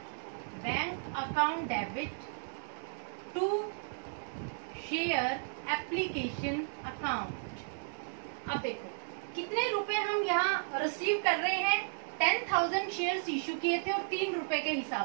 debit to share application account. अब देखो कितने रुपए हम यहाँ रिसीव कर रहे हैं। 10,000 शेयर्स इश्यू किए थे और 3 रुपए के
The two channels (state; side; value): silent; left; digital silence